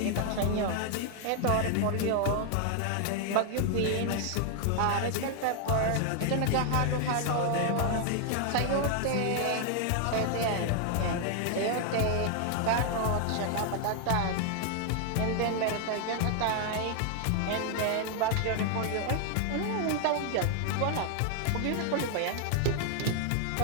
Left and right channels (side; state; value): both; different; correlation 0.00